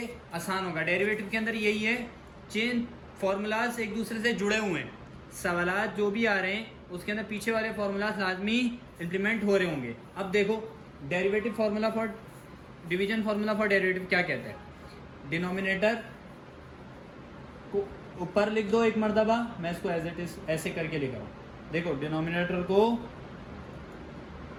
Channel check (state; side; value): identical; both; correlation 1.00